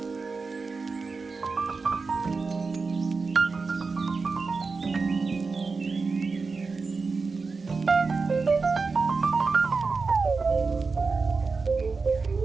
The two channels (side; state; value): left; quieter; 4.4 dB